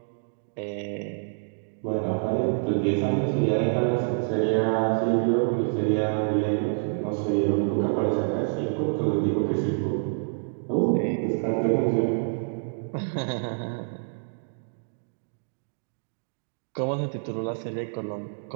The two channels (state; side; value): silent; left; digital silence